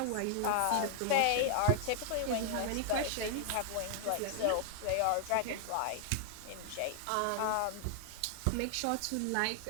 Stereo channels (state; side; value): different; both; correlation 0.00